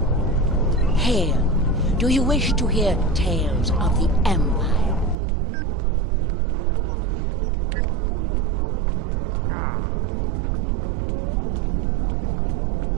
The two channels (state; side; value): drops out; left; at 5.2 s